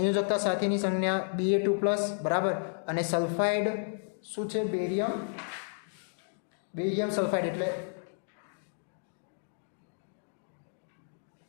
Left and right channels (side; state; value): right; silent; digital silence